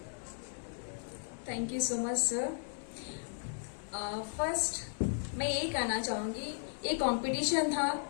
Thank you so much sir. First मैं यही कहना चाहूँगी, ये कंपटीशन था,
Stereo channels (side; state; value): right; silent; digital silence